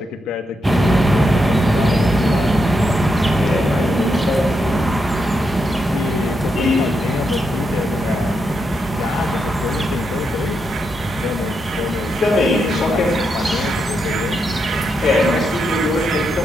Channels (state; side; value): normal; both; correlation 0.83